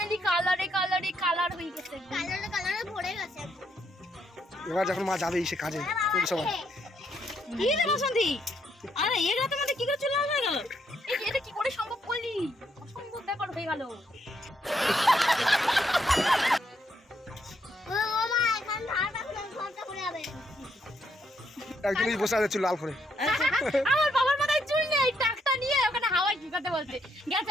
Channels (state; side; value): normal; both; correlation 0.75